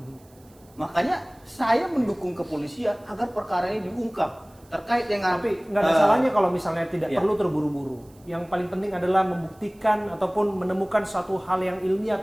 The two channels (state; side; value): noise; right; hiss, 30 dB below the sound